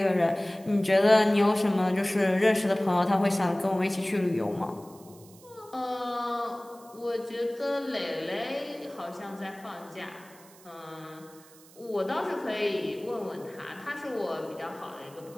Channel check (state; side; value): noise; right; hiss, 24 dB below the sound